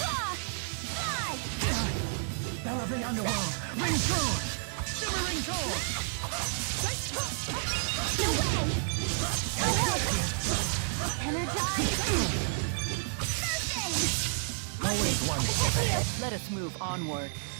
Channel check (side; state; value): left; silent; 57 dB below the other